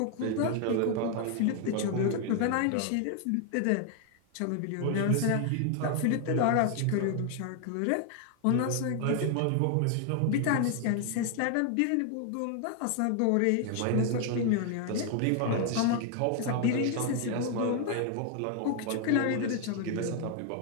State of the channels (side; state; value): both; different; correlation 0.00